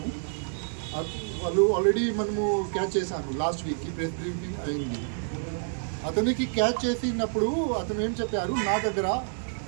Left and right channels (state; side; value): silent; left; digital silence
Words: వాళ్ళు ఆల్రెడీ మనము క్యాచ్ చేశాను. లాస్ట్ వీక్కి ప్రెస్ బ్రీఫింగ్ అయింది. అతనికి క్యాచ్ చేసినప్పుడు అతను ఏం చెప్పారు,